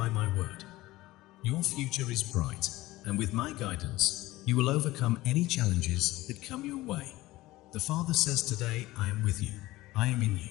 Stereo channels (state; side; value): quieter; right; 18.1 dB